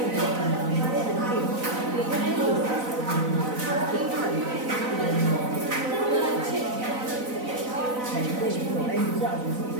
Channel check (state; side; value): late; left; 4.0 ms